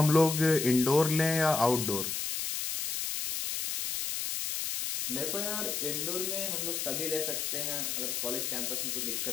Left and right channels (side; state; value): left; noise; hiss, 2 dB below the sound